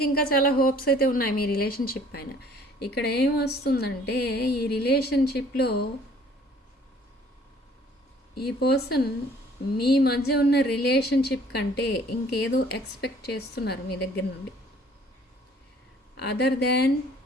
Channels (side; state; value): both; normal; correlation 0.56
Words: ఇంకా చాలా హోప్స్ అయితే ఉన్నాయి మీ రిలేషన్షిప్ పైన. ఇక్కడ ఏమొస్తుందంటే ఈ రిలేషన్షిప్లో ఈ పర్సన్ మీ మధ్య ఉన్న రిలేషన్షిప్ కంటే ఇంకేదో ఎక్స్పెక్ట్ చేస్తున్నారు మీ దగ్గర నుండి, other than